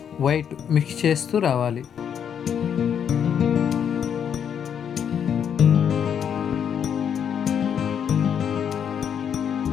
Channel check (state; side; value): quieter; right; 8.3 dB